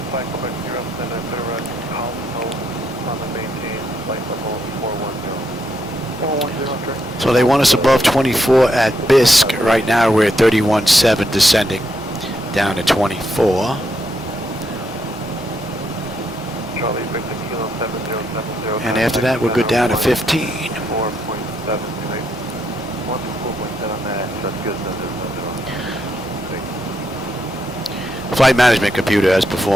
So they want us above 24 at Bisque. Right now we're at 31.7 descending down to 24. And after that we'll go down to 15. Flight management computer has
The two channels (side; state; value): both; normal; correlation 0.78